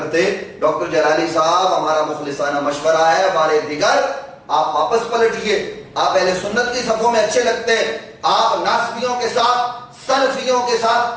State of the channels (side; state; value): both; identical; correlation 1.00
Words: ڈاکٹر جلالی صاحب، ہمارا مخلصانہ مشورہ ہے، ہمارے دیگر آپ واپس پلٹیے۔ آپ اہل سنت کی صفوں میں اچھے لگتے ہیں، آپ ناسبیوں کے ساتھ، سلفیوں کے